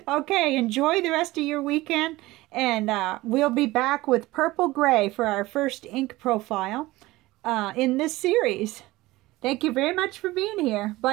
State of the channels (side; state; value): left; quieter; 19.1 dB